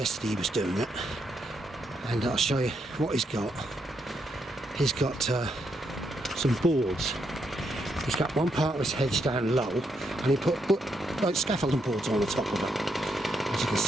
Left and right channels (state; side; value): normal; both; correlation 0.79